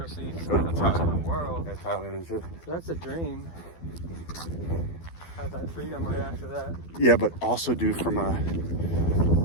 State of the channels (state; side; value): late; right; 12 ms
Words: see some other parts of the world. yeah, Thailand and shit. So that's a dream. Have that freedom right after that. Yeah, but also, dude, from a